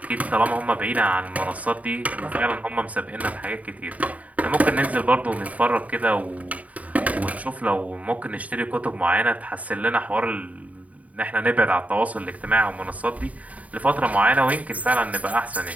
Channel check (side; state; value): left; late; 0.070 ms